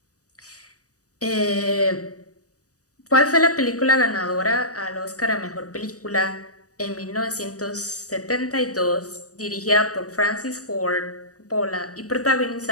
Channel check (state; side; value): late; right; 0.66 ms